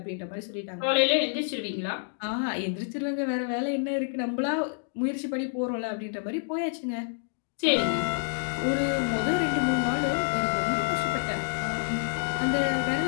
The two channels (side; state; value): right; silent; digital silence